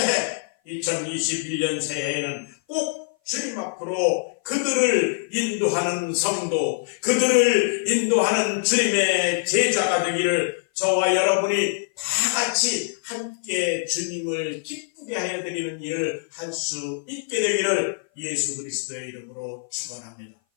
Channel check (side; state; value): right; silent; 57 dB below the other